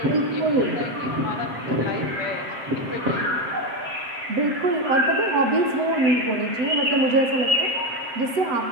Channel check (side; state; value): left; late; 7.6 ms